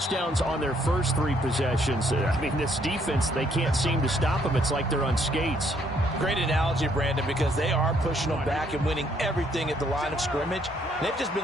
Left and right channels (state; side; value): normal; both; correlation 0.68